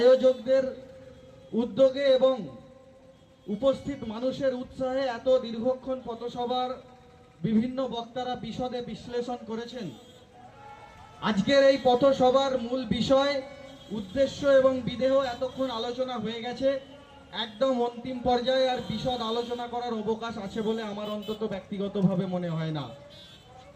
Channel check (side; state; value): both; identical; correlation 1.00